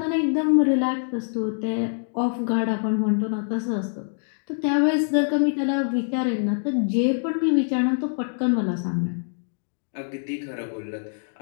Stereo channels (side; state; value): right; silent; digital silence